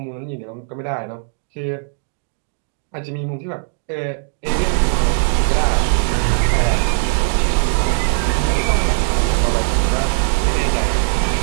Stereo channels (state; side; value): silent; left; digital silence